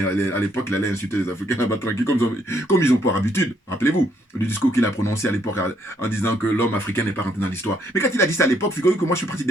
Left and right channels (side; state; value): both; normal; correlation 0.70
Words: à l'époque, il allait insulter les Africains là-bas tranquille, comme ils ont pour habitude. Rappelez-vous, le discours qu'il a prononcé à l'époque en disant que l'homme africain n'est pas rentré dans l'histoire. Mais quand il a dit ça à l'époque, figurez-vous que moi, je suis parti